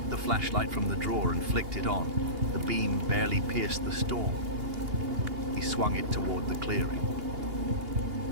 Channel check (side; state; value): left; late; 2.8 ms